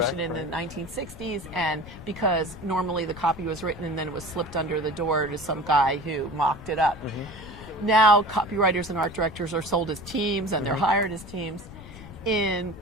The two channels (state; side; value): noise; left; rumble, 15 dB below the sound